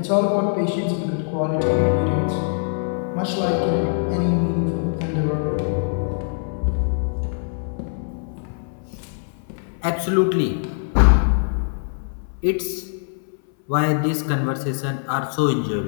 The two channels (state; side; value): silent; right; 60 dB below the other